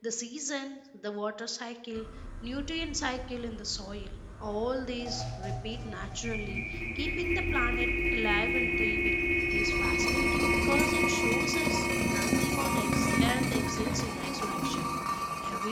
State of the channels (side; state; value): both; identical; correlation 1.00